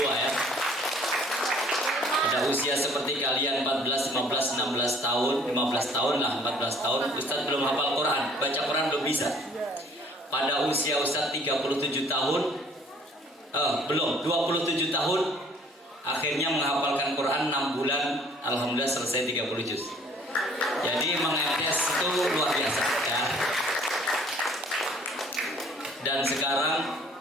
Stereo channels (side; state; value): both; normal; correlation 0.56